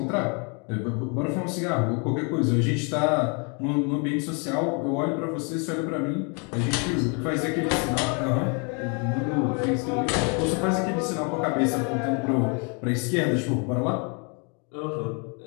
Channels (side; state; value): right; quieter; 35.6 dB